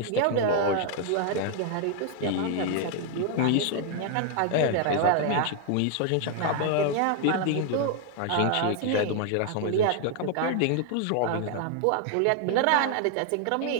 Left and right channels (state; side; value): different; both; correlation 0.00